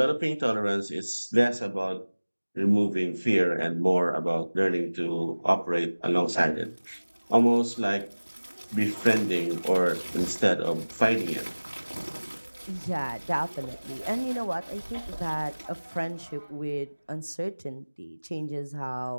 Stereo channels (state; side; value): inverted; both; correlation -1.00